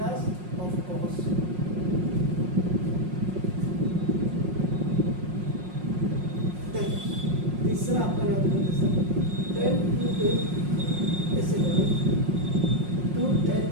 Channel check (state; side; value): late; left; 5.5 ms